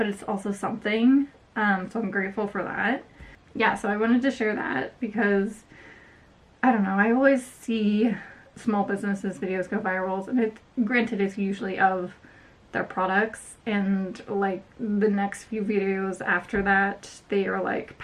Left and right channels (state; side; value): identical; both; correlation 1.00